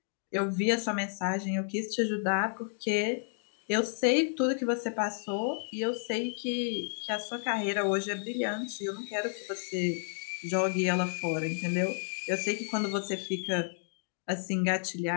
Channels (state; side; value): silent; right; digital silence